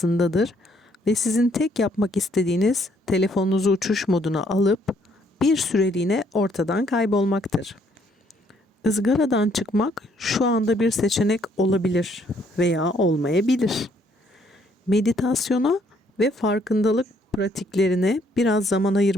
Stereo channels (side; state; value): both; normal; correlation 0.67